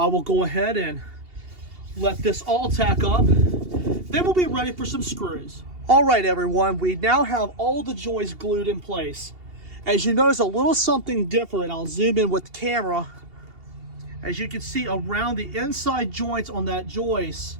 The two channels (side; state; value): left; late; 2.8 ms